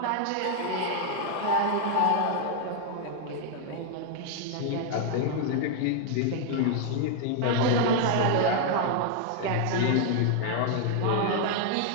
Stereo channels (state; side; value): different; both; correlation 0.00